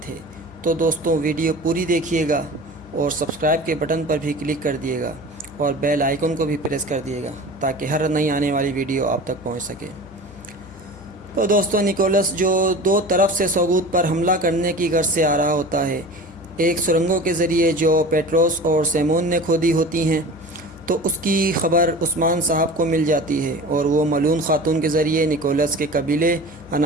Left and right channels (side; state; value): left; noise; hum, 22 dB below the sound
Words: تھے۔ تو دوستو ویڈیو پوری دیکھیے گا اور سبسکرائب کے بٹن پر بھی کلک کر دیے گا اور بیل آئیکن کو بھی پریس کر دیے گا تاکہ ہر نئی آنے والی ویڈیو آپ تک پہنچ سکے۔ تو دوستو نکولس جو دو طرف سے سوگوت پر حملہ کرنے کی غرض سے آ رہا ہوتا ہے، ایک سرنگوں کے ذریعے جو پیٹروس اور سیمون نے کھودی ہوتی ہیں، تو اس کی خبر عثمان صاحب کو مل جاتی ہے اور وہ ملون خاتون کے ذریعے نکولس کے قبیلے